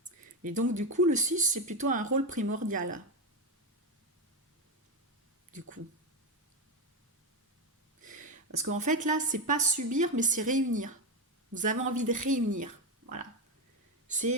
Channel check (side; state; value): both; normal; correlation 0.11